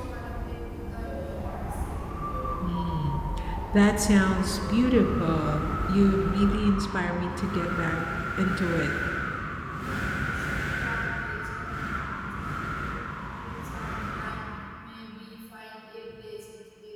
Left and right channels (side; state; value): both; identical; correlation 1.00